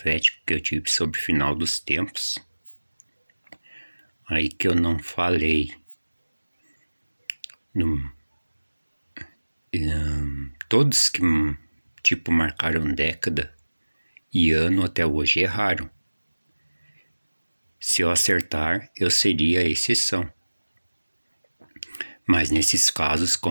que eu tive sobre o final dos tempos. Aí que eu não falei. Todos que marcaram década e ano até hoje erraram. Se eu acertar, eu seria a exceção. Mas nesses casos,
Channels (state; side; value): inverted; both; correlation -1.00